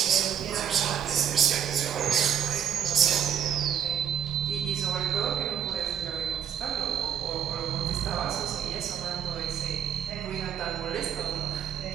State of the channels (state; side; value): quieter; left; 9.1 dB